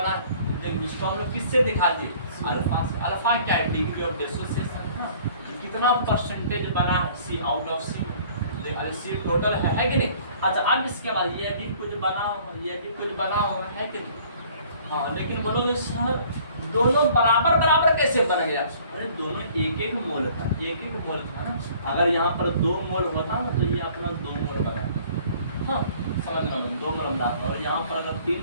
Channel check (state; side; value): inverted; both; correlation -0.54